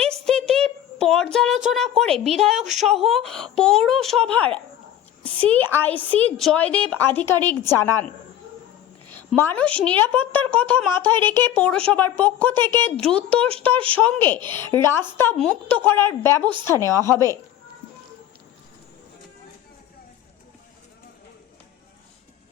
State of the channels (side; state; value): right; quieter; 11.6 dB